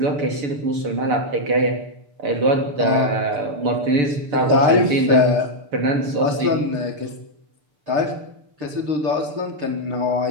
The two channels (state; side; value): late; left; 6.9 ms